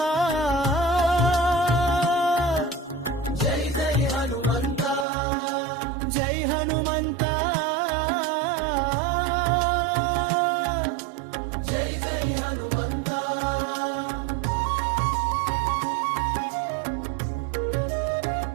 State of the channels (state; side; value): drops out; left; at 5.1 s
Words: జై జై హనుమంతా, జై హనుమంతా, జై జై హనుమంతా.